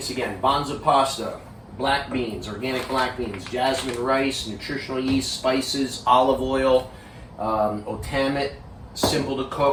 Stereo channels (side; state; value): both; identical; correlation 1.00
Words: again: Banza pasta, black beans, organic black beans, jasmine rice, nutritional yeast, spices, olive oil, Otamit, simple to